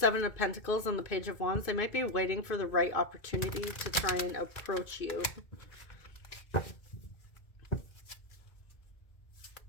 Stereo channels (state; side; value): late; right; 2.4 ms